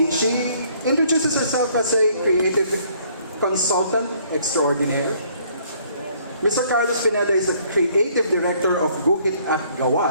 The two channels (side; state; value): both; inverted; correlation -0.62